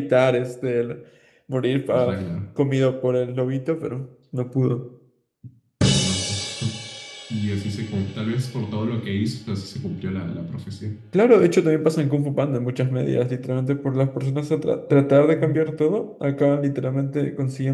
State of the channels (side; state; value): both; identical; correlation 1.00